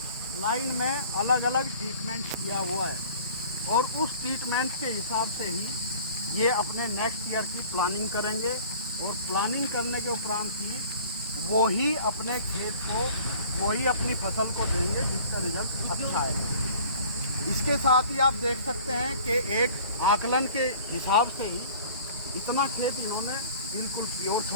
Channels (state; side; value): inverted; both; correlation -0.48